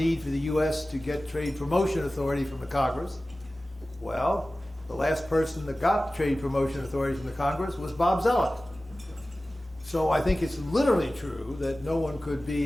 for the U.S. to get trade promotion authority from the Congress. Well, the last person that got trade promotion authority from the Congress was Bob Zoellick. So I think it's literally true that no one could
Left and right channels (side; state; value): both; normal; correlation 0.96